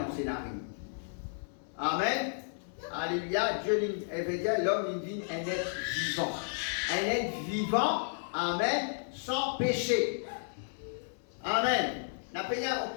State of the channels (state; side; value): silent; right; digital silence